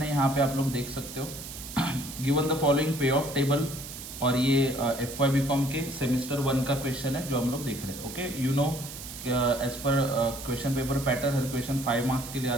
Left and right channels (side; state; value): right; noise; hiss, 11 dB below the sound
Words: यहाँ पे आप लोग देख सकते हो गिवन द फॉलोइंग पे ऑफ टेबल, और ये एफ वाई बी कॉम के सेमिस्टर 1 का क्वेश्चन है जो हम लोग देख रहे हैं. Okay, you know as per question paper pattern हर क्वेश्चन 5 मार्क्स के लिए